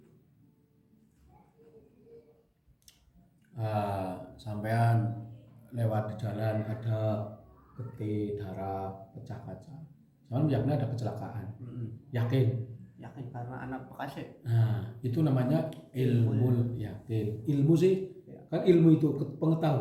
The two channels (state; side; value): identical; both; correlation 1.00